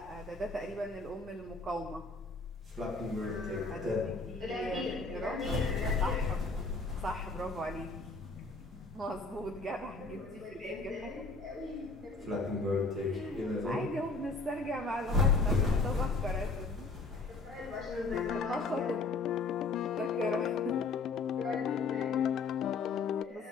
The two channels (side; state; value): right; quieter; 3.8 dB